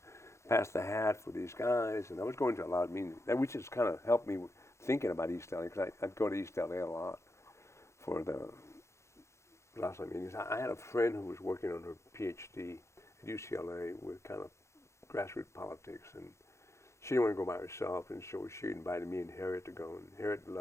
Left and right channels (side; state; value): right; late; 0.14 ms